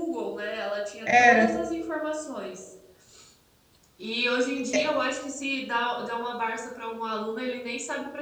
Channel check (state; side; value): identical; both; correlation 1.00